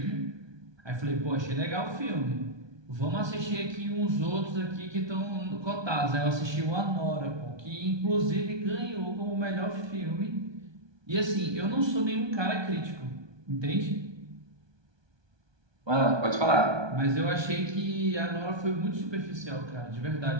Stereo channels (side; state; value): left; late; 1.2 ms